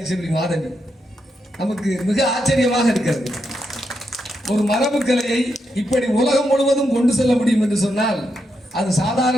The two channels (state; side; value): normal; both; correlation 0.83